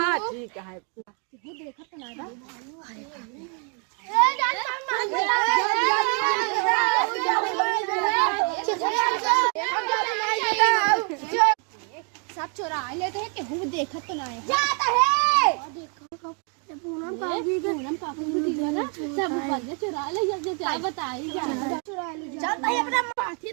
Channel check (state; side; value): quieter; left; 39.3 dB